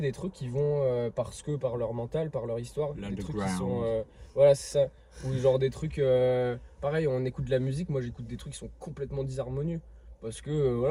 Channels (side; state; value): both; identical; correlation 1.00